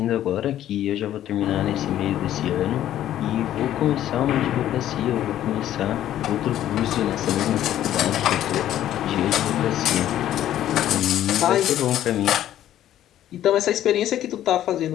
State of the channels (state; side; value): quieter; right; 12.1 dB